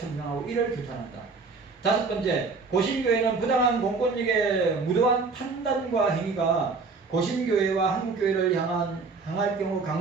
이를 규탄한다. 다섯 번째, 고신교회는 부당한 공권력의 무도한 판단과 행위가 고신교회와 한국교회를 향할 경우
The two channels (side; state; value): left; quieter; 4.3 dB